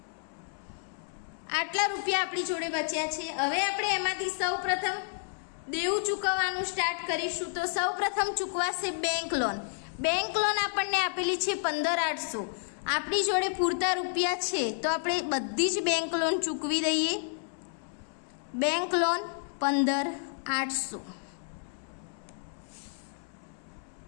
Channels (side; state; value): right; silent; 57 dB below the other